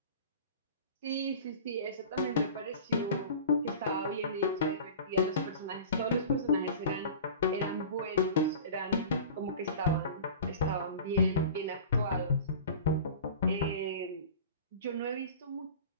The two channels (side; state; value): both; inverted; correlation -0.38